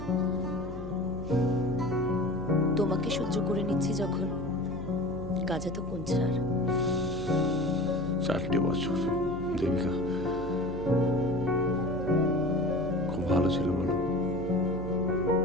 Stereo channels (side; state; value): left; noise; hum, 11 dB below the sound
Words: তোমাকে সহ্য করে নিচ্ছি যখন, কাজে তো কোন ছাড়। 4টে বছর দেবিকা খুব ভালো ছিল বলো।